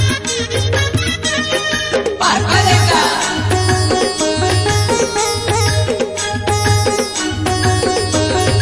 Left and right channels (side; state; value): both; identical; correlation 1.00